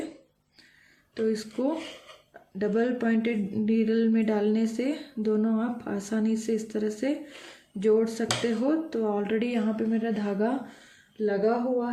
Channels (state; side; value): identical; both; correlation 1.00